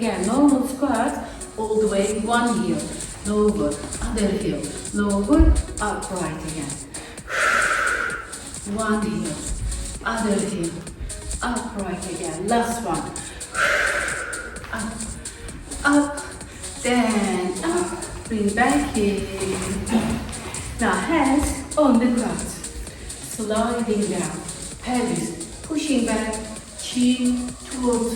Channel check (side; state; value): both; identical; correlation 1.00